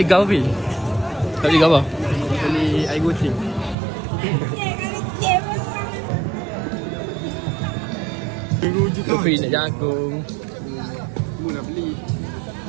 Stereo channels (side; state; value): left; drops out; at 3.8 s